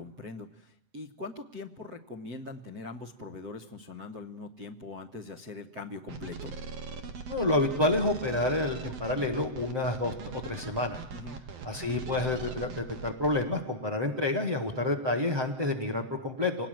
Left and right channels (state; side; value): late; left; 7.8 ms